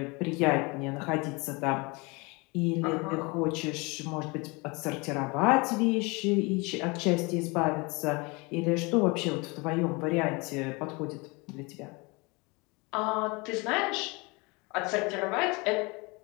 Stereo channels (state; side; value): quieter; right; 27.3 dB